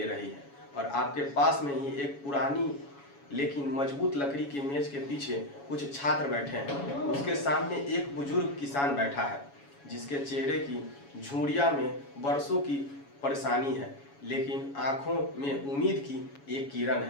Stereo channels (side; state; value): right; late; 7.2 ms